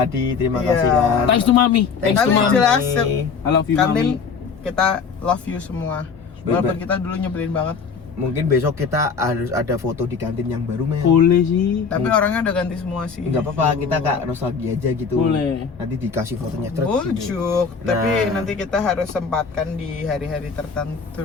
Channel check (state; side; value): quieter; right; 5.6 dB